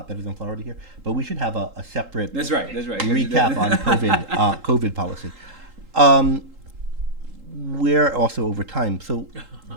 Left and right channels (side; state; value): left; late; 3.8 ms